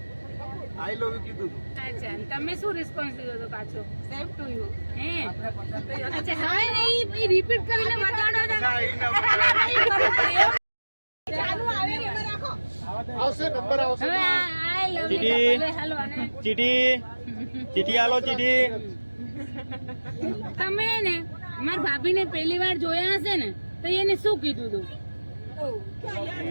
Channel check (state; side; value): inverted; both; correlation -1.00